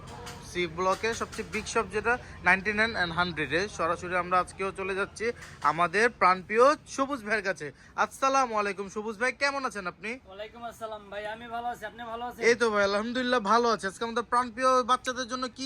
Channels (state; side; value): identical; both; correlation 1.00